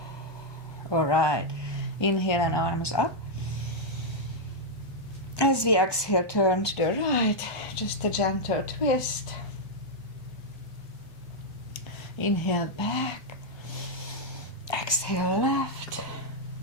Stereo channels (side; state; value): right; late; 1.2 ms